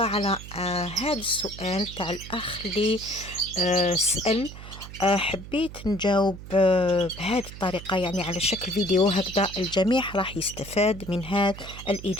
على هذا السؤال تاع الأخ اللي سأل. حبيت نجاوب بهذه الطريقة، يعني على شكل فيديو، هكذا الجميع راح يستفاد من هذه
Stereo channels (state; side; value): noise; right; hum, 13 dB below the sound